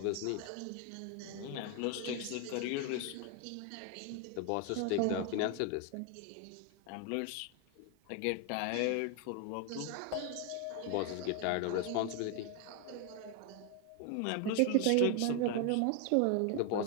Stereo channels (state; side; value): different; both; correlation 0.01